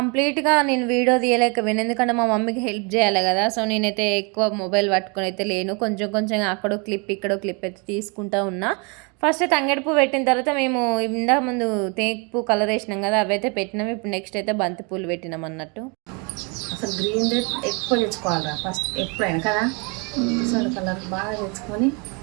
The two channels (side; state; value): left; quieter; 32.7 dB